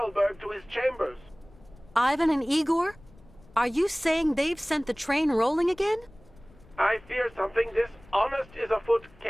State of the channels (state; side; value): noise; left; rumble, 25 dB below the sound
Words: to his chambers. Ivan and Igor? Are you saying they've sent the train rolling again? I fear something dishonest is afoot,